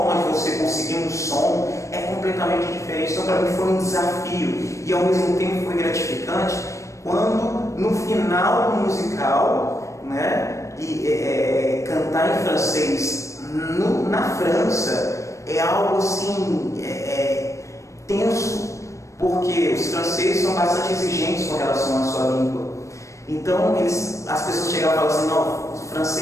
de você conseguir um som é completamente diferente. Então, para mim, foi um desafio. E ao mesmo tempo foi gratificante quando, no final do musical, né, cantar em francês na França é algo assim tenso, porque os franceses são bastante exigentes com relação à sua língua. Então, as pessoas chegavam e falavam assim, não, os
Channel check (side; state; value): right; late; 0.15 ms